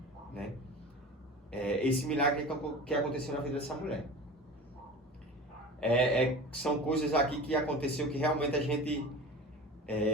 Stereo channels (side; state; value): both; normal; correlation 0.34